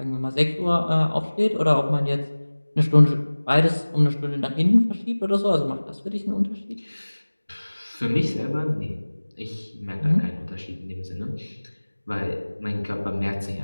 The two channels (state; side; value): inverted; both; correlation -1.00